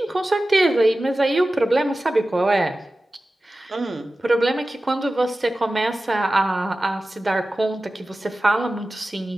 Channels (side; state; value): both; normal; correlation 0.95